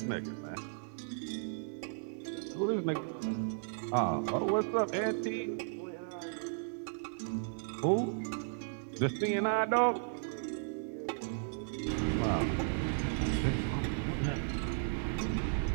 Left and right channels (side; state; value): left; silent; digital silence